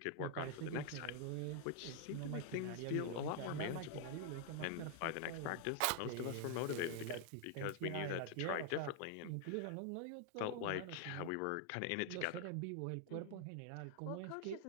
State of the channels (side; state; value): both; different; correlation 0.00